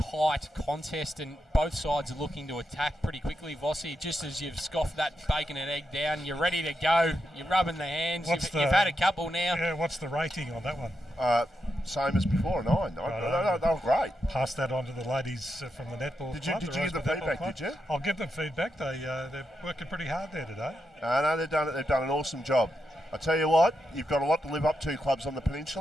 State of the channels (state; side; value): normal; both; correlation 0.85